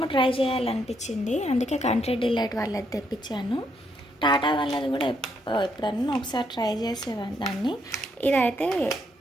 ట్రై చేయాలనిపించింది, అందుకే కంట్రీ డిలైట్ వాళ్ళది తెప్పించాను. టాటా వాళ్ళది కూడా ఎప్పుడన్నా ఒకసారి ట్రై చేసేదాన్ని. ఇదైతే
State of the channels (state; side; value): normal; both; correlation 0.75